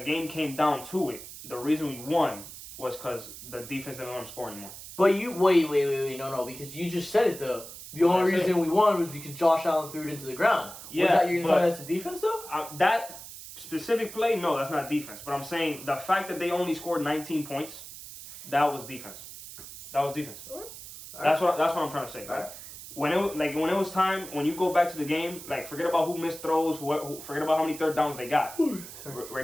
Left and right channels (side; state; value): right; noise; hiss, 13 dB below the sound